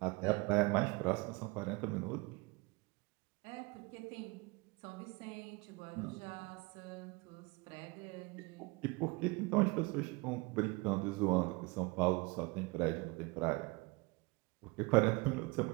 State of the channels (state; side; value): quieter; left; 25.6 dB